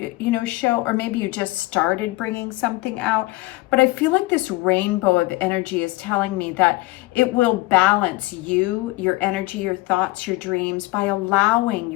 or maybe you just started bringing something out. But I feel like this rainbow of energy is telling me that it will balance you, your energy, your thoughts, your dreams, by allowing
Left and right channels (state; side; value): quieter; right; 20.5 dB